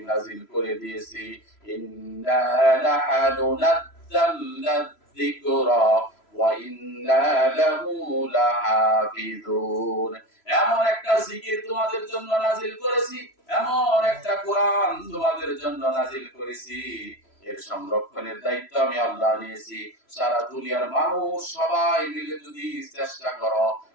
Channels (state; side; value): late; right; 3.0 ms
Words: নাজিল করে দিয়েছি। ইন্না লাহানু নাযালনা যিকরা ওয়া ইন্না লাহু লাহাফিজুন। এমন একটা জিকির তোমাদের জন্য নাজিল করেছি, এমন একটা কোরআন তোমাদের জন্য নাজিল করেছি, এর সংরক্ষণের দায়িত্ব আমি আল্লাহ নিয়েছি। সারা দুনিয়ার মানুষ সবাই মিলে যদি চেষ্টা করো,